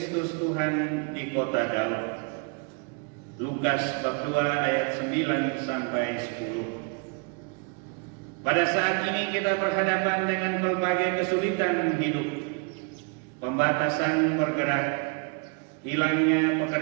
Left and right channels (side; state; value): left; quieter; 35.6 dB